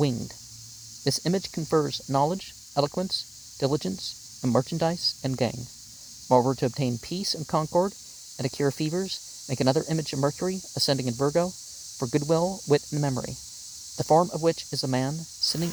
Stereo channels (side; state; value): left; noise; hiss, 23 dB below the sound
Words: This image confers knowledge, eloquence, diligence, and merchandise and gain. Moreover, to obtain peace and concord, and to cure fevers, make another image of Mercury, ascending in Virgo, for goodwill, wit, and memory, the form of which is a man sitting